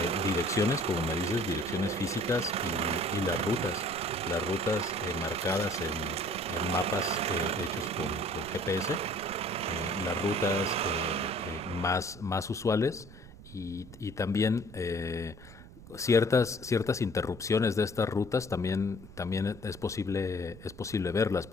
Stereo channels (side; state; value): right; noise; rumble, 18 dB below the sound